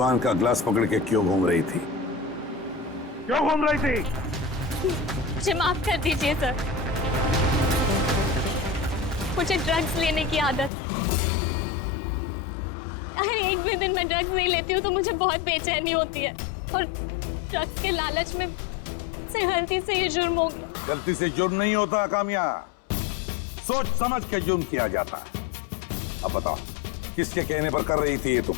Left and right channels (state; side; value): drops out; right; at 10.7 s